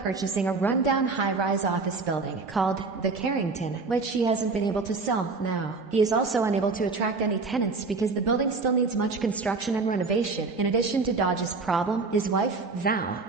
a rundown high-rise office building called the Carrington, which he hasn't been able to sell now. He is also unable to attract any tenants because the building still needs much construction and renovation. In addition to Dodge's problem, his wife, Val,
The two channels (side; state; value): left; quieter; 4.1 dB